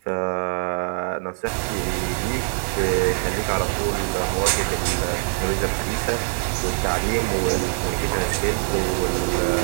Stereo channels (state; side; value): silent; left; digital silence